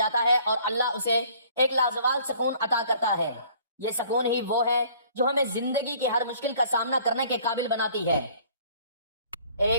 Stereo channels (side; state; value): both; inverted; correlation -0.55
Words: ہے اور اللہ اسے ایک لازوال سکون عطا کرتا ہے۔ یہ سکون ہی وہ ہے جو ہمیں زندگی کی ہر مشکل کا سامنا کرنے کے قابل بناتی ہے۔